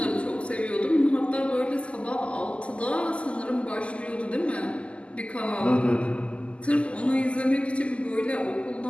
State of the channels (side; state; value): right; late; 0.056 ms